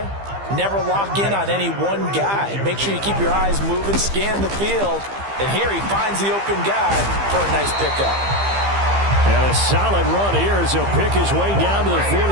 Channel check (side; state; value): left; late; 15 ms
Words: never lock in on any one guy. Make sure you keep your eyes moving, scan the field. And here he finds the open guy for a nice pickup. And a solid run here as he'll pick his way down to the